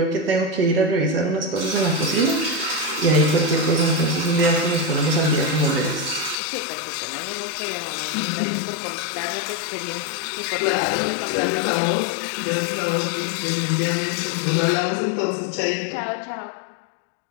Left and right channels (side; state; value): right; drops out; at 6.4 s